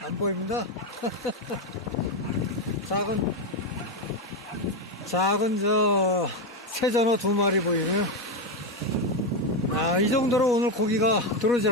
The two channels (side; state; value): both; normal; correlation 0.09